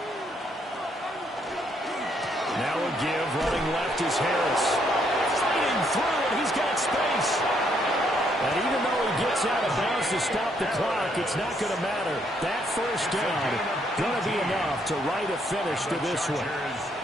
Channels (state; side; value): normal; both; correlation 0.72